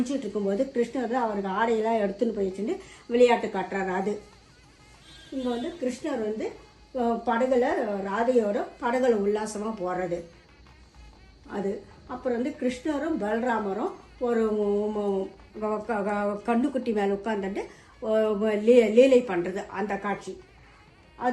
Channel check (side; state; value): both; identical; correlation 1.00